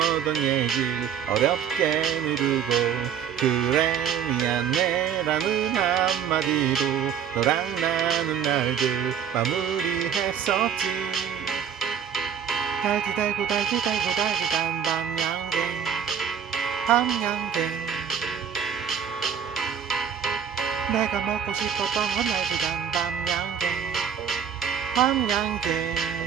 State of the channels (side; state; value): left; quieter; 8.3 dB